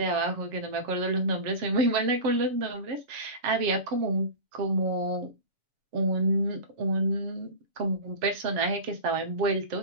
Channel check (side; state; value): left; late; 7.2 ms